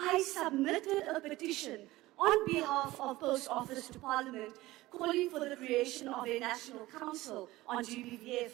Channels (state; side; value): quieter; left; 18.1 dB